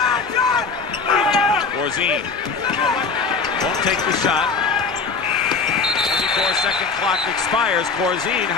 Corzine won't take the shot. 24-second clock expires. Corzine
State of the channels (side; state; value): right; quieter; 4.8 dB